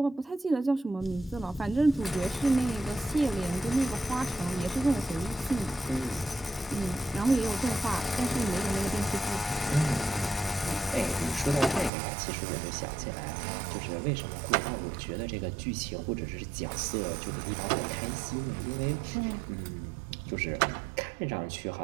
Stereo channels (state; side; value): drops out; left; at 11.9 s